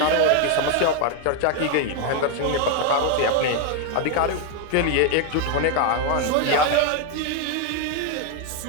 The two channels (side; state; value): both; different; correlation 0.01